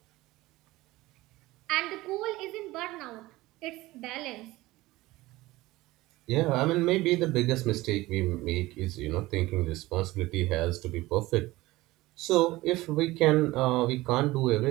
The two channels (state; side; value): quieter; left; 18.8 dB